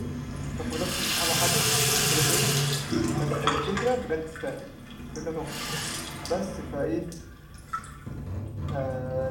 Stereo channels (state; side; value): identical; both; correlation 1.00